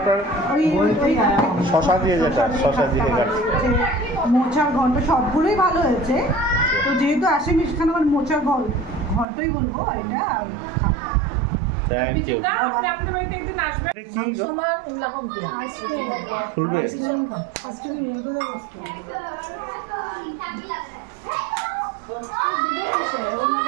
শশা দিয়ে, যেটা শশা দিয়ে মোচার ঘন্ট, সবগুলোই ভালো হয়েছে। তো যেহেতু আসামি সেখানে আমার মোচার ঘন্টই বলবো এটা, আর খাটটা। Thank you. আপনি আপনাদের বাড়িতে একদিন আসবেন। এটা কি গো? খুলবে?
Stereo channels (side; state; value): left; drops out; at 9.2 s